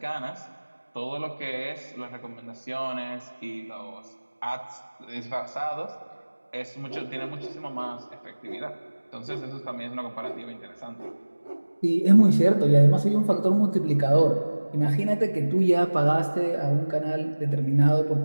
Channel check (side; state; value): both; inverted; correlation -1.00